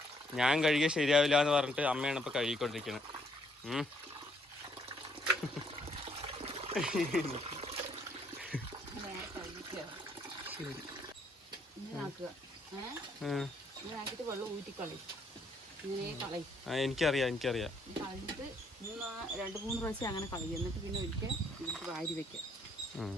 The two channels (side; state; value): both; normal; correlation 0.69